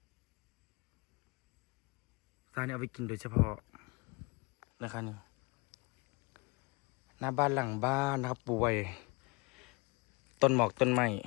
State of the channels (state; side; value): quieter; right; 27.4 dB